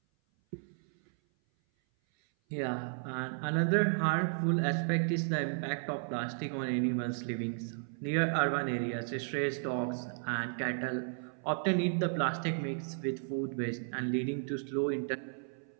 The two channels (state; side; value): silent; left; 55 dB below the other